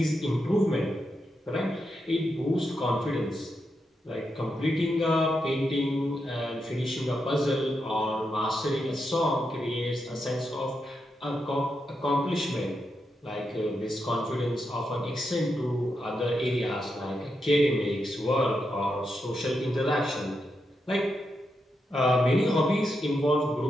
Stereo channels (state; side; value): normal; both; correlation 0.85